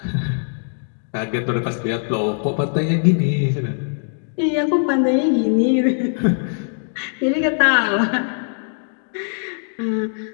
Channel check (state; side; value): silent; right; digital silence